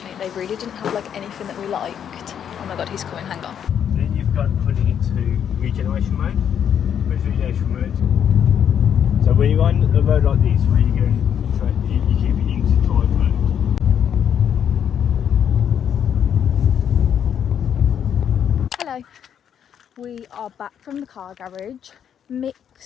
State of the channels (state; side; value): quieter; right; 8.7 dB